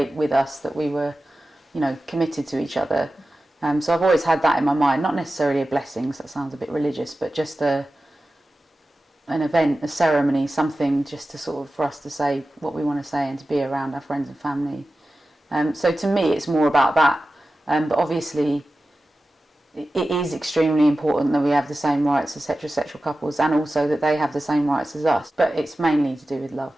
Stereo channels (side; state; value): both; normal; correlation 0.94